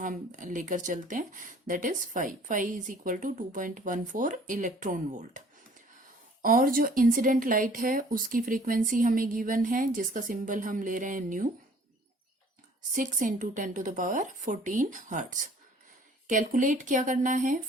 लेकर चलते हैं that is phi. Phi is equal to 2.14 electron volt. और जो इंसिडेंट लाइट है उसकी फ्रीक्वेंसी हमें गिवन है जिसका सिंबल हम ले रहे हैं new, 6 into 10 to the power 14 hertz. Calculate क्या करना है?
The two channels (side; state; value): both; normal; correlation 0.54